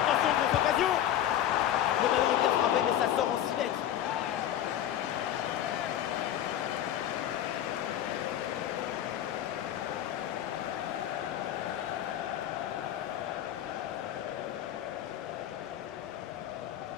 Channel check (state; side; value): quieter; right; 11.3 dB